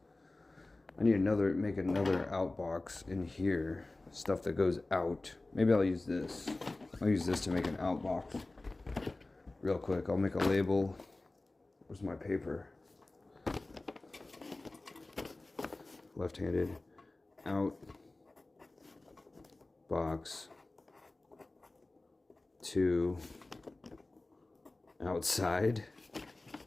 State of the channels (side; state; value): right; quieter; 3.0 dB